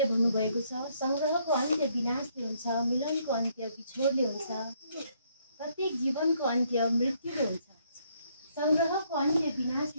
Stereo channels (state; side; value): inverted; both; correlation -0.70